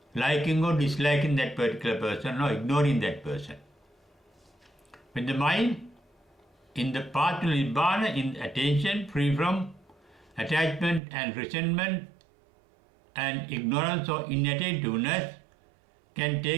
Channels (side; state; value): left; drops out; at 11.0 s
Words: liking or disliking that particular person or ignoring that person. When the mind in the path to Nibbana, in attention, free from attachment and resentment and ignorance or inattentiveness, can